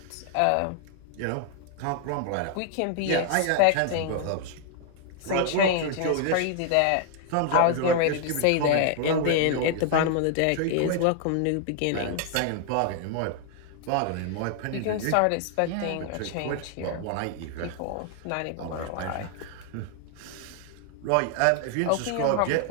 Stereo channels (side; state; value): both; different; correlation 0.00